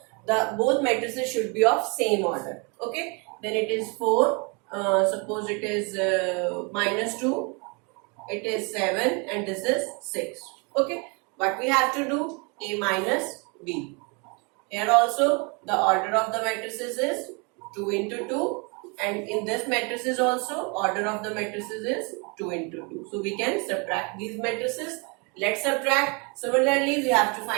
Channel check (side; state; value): left; quieter; 32.2 dB